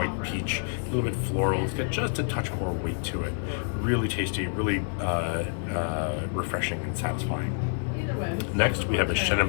peach, a little bit floral. It's got just a touch more weight to it. Really tasty, really refreshing and satisfying. Next, we have a Chenin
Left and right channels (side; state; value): right; silent; 59 dB below the other